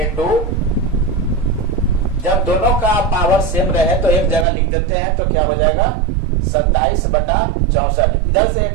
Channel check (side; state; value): left; drops out; at 4.5 s